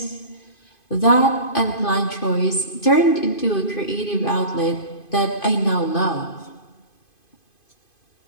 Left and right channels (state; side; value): late; right; 2.5 ms